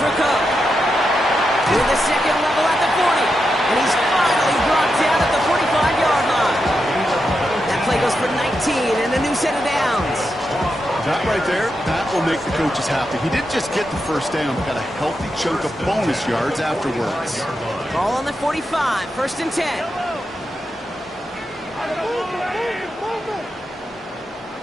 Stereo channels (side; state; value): both; normal; correlation 0.86